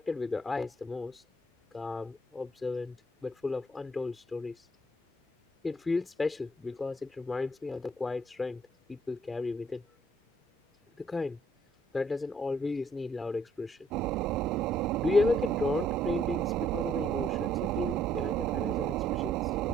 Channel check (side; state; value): both; normal; correlation 0.66